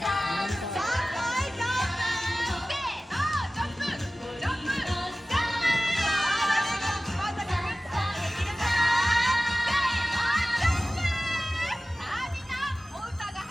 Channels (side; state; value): both; normal; correlation 0.97